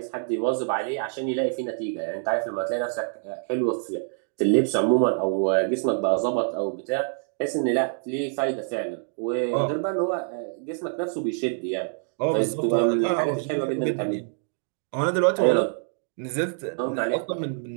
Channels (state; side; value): silent; left; digital silence